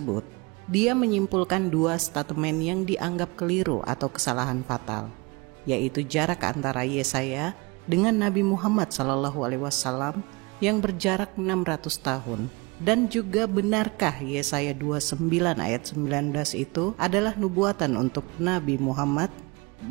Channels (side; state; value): left; quieter; 26.9 dB